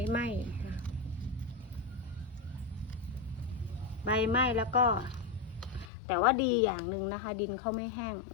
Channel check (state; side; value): drops out; right; at 5.9 s